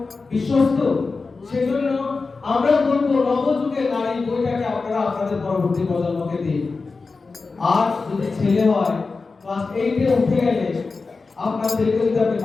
বিশ্বস্ত, সেজন্য আমরা বলবো নবযুগের নারী বইটাকে আপনারা আপনাদের পরবর্তী প্রজন্মকে দিন। আর যদি ছেলে হয় ক্লাস 8-এ উঠে গেলে আপনার ছেলেকে যদি আপনি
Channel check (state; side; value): quieter; right; 4.1 dB